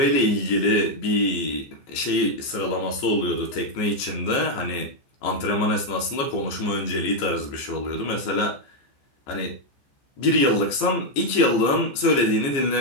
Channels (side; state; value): right; late; 15 ms